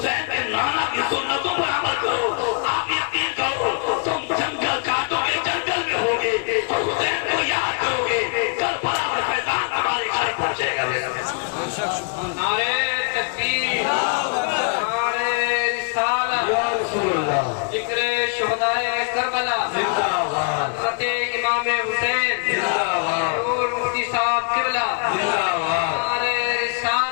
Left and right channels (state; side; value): quieter; right; 36.8 dB